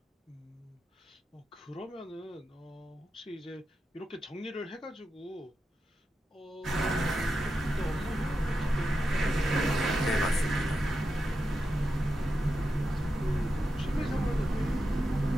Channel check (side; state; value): both; normal; correlation 0.88